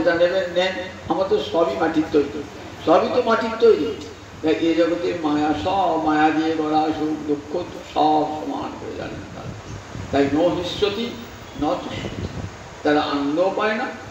নেবেন নেন, আমার তো সবই মাটির তৈরি, সবই তো মাটির তৈরি। এই জগতের মায়া, সব মায়া দিয়ে গড়া, সুখ দুঃখ সব সমান করে জানেন। তাই ন হিষ্যতি ন তুষ্যতি। তারা আনন্দ পায় না,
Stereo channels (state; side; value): identical; both; correlation 1.00